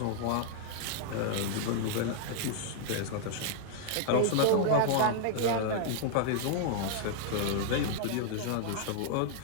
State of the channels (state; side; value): different; both; correlation 0.00